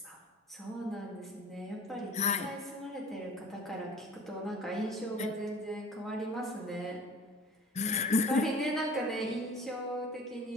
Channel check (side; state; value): both; normal; correlation 0.45